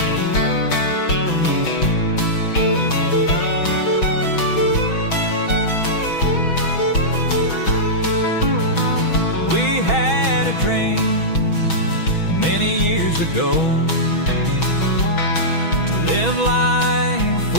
We had a dream many years ago to live life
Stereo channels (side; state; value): right; late; 6.2 ms